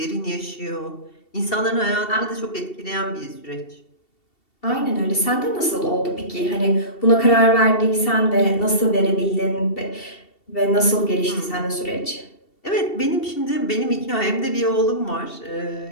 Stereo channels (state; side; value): late; right; 2.7 ms